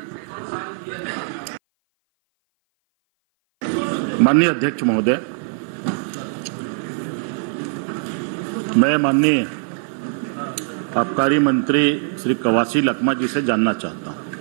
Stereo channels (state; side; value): silent; left; 57 dB below the other